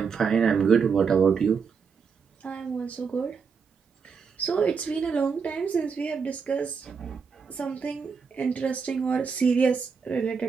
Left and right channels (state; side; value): quieter; left; 5.8 dB